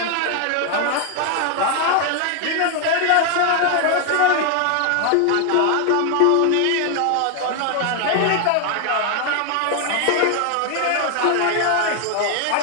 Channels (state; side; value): different; both; correlation 0.00